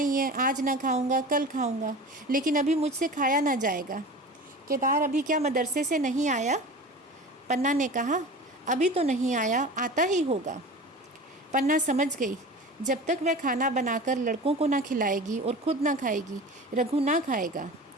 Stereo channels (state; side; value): normal; both; correlation 0.35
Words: है, आज ना खाऊंगा कल खाऊंगा, लेकिन अभी मुझसे खाया ना जाएगा। केदार अभी क्या मदरसे से नहीं आया। पन्ना ने कहा, अभी तो नहीं आया, आता ही होगा। पन्ना समझ गई, जब तक वह खाना बनाकर लड़कों को ना खिलाएगी और खुद ना खाएगी, रघु ना खाएगा।